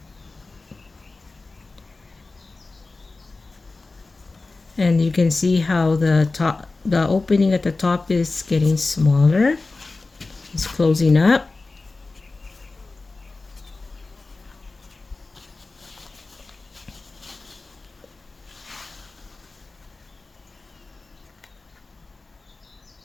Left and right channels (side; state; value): right; quieter; 3.5 dB